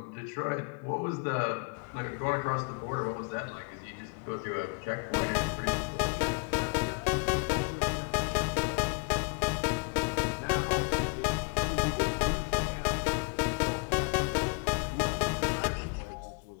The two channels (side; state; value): right; quieter; 36.1 dB